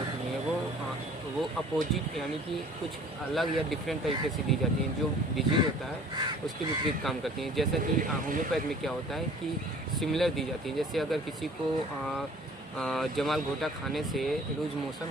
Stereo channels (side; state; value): both; normal; correlation 0.50